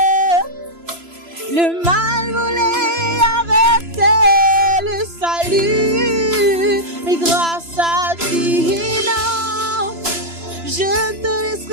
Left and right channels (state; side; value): late; left; 3.0 ms